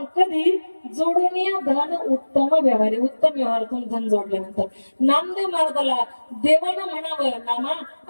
कधी जोडून या धन उत्तम व्यवहारे. उत्तम व्यवहारातून धन जोडल्यानंतर नामदेव महाराजाला देवानं म्हणावं नामा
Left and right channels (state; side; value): inverted; both; correlation -1.00